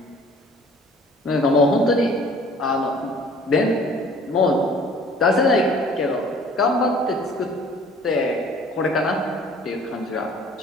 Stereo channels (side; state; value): both; normal; correlation 0.52